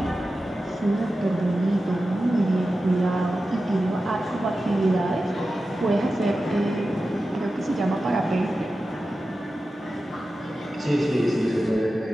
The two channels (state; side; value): normal; both; correlation 0.93